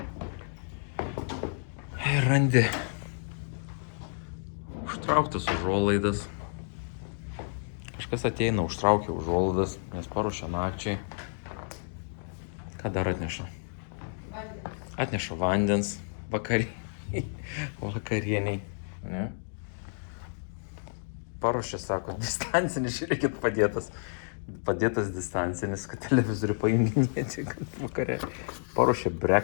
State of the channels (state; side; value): silent; right; digital silence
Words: ir randi užtrauktas užuolaidas. Kažkas ateina, užtraukia užuolaidas, nes paruošia nakčiai. Ką dar atneša? Atneša vandens vakarieniai. Ne? Paruošia, sako, distancinis, žiūrėkit, padėtas distancinis, kad televizorių pajunginėti vakare. Paruošia